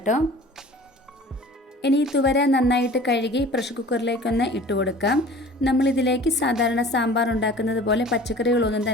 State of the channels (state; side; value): normal; both; correlation 0.44